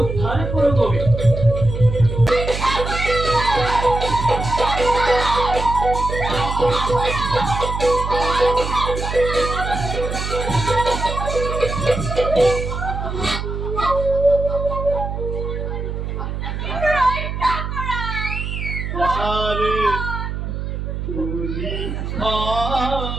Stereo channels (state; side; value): noise; right; hum, 4 dB below the sound